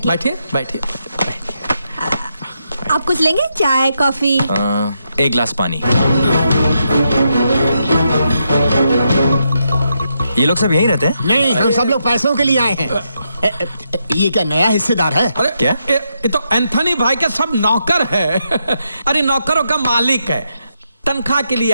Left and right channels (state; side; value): inverted; both; correlation -0.81